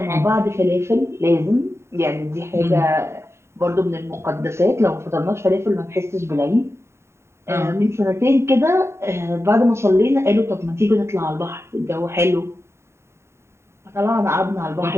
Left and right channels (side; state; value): left; late; 0.13 ms